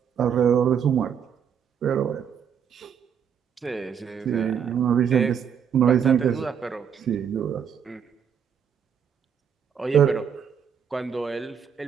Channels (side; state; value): left; quieter; 7.8 dB